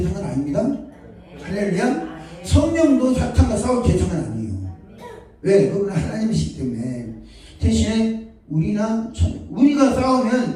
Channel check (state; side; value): identical; both; correlation 1.00